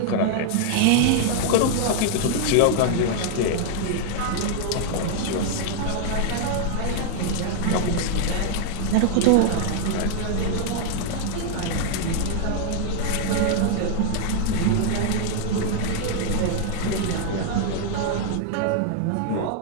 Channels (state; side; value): different; both; correlation 0.00